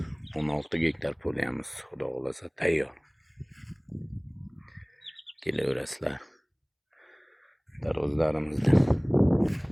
16 gektar polimiz xudo xolasa tayyor. Kelaverasizlar. Taruzlarimizda.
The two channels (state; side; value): identical; both; correlation 1.00